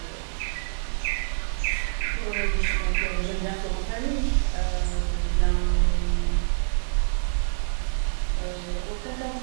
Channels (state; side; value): silent; left; digital silence